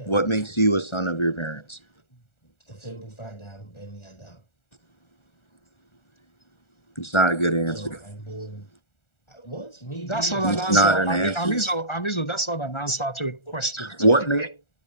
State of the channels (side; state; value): right; late; 1.4 ms